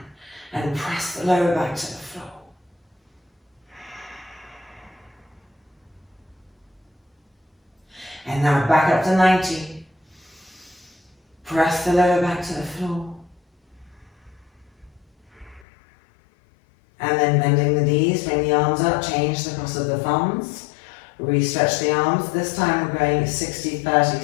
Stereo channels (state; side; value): drops out; right; at 15.7 s